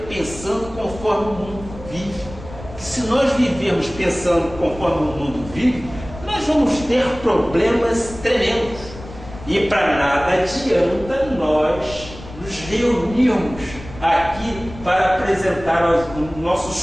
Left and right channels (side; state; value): left; noise; rumble, 15 dB below the sound